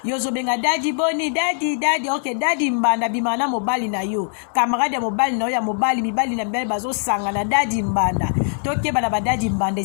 yo ozobenga dadi boni dadi ok dadi mbanda bima na mobali na yo camarade ya mobali na yo ya mobali mibali na mibali bazosanga na dadi mbanda tokeba na badadi mbanda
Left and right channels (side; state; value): right; silent; digital silence